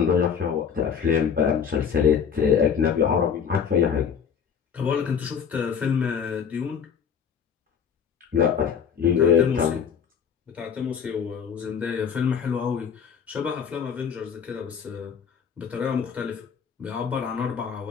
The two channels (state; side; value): quieter; right; 7.2 dB